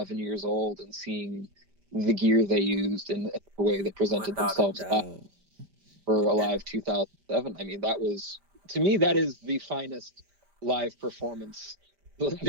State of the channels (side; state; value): left; late; 5.0 ms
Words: years old and seeing the gear they used and the way they presented Without a themselves doubt. for Alive 2007. I mean, to me, that is the finest live performance